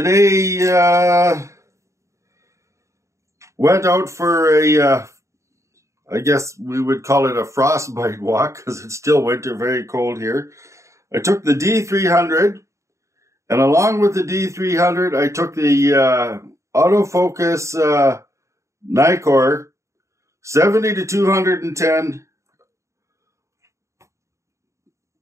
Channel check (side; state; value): left; late; 0.14 ms